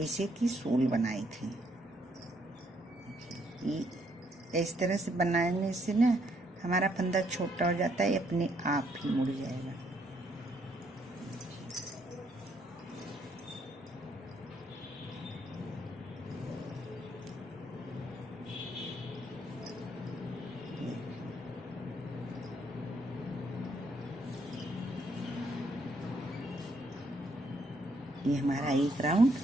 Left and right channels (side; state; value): both; normal; correlation 0.71